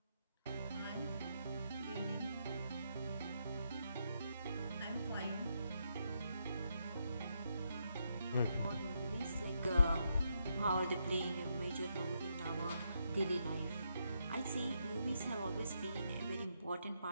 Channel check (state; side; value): inverted; both; correlation -0.79